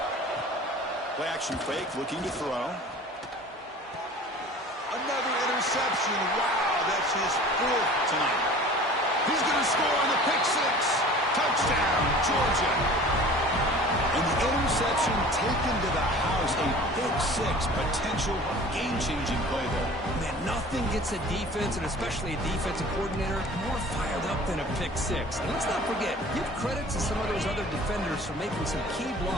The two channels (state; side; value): normal; both; correlation 0.44